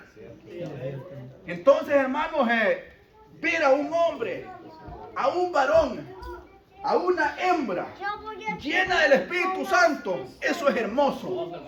Entonces, hermanos, ver a un hombre, a un varón, a una hembra llena del Espíritu Santo, eso es hermoso.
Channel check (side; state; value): both; identical; correlation 1.00